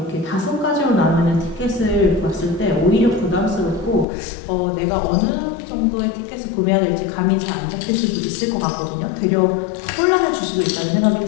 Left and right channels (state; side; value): drops out; right; at 4.0 s